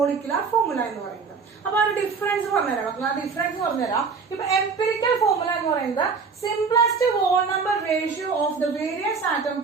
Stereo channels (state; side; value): quieter; left; 5.2 dB